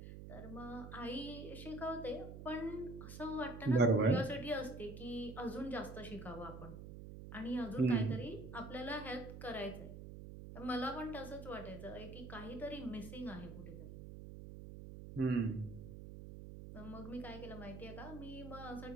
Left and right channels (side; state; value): right; noise; hum, 11 dB below the sound